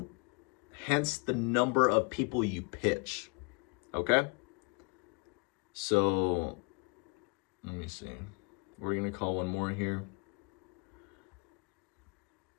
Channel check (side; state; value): right; quieter; 33.4 dB